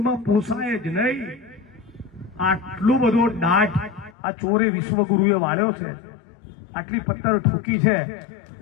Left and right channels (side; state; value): right; drops out; at 4.1 s